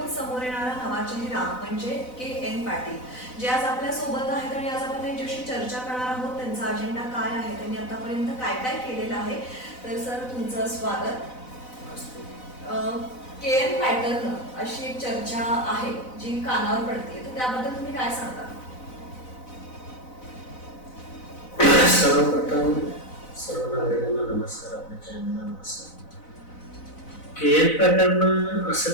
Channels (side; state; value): right; late; 4.0 ms